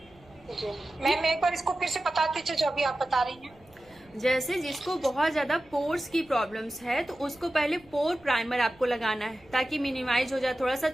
मैम एक बार इसको फिर से बता दीजिए जो अभी आप बता रही हैं। जैसे जिसको बहुत ज्यादा पोर्स की प्रॉब्लम्स है तो उसको पहले पोर प्राइमर आपको लगाना है, ताकि मिनिमाइज हो जाए, थोड़ा सा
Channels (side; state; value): right; noise; rumble, 28 dB below the sound